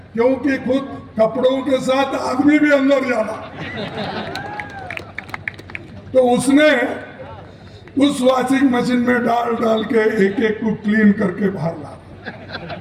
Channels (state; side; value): identical; both; correlation 1.00